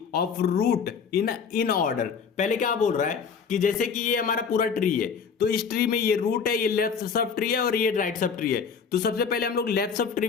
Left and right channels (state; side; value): quieter; right; 6.1 dB